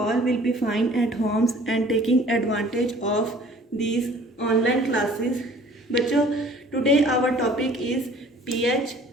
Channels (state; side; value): normal; both; correlation 0.52